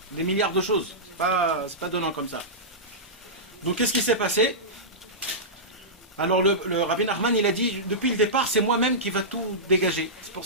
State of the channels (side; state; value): both; normal; correlation -0.15